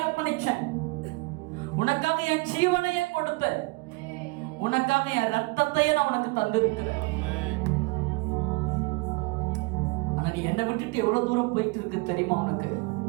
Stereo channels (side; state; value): left; quieter; 26.3 dB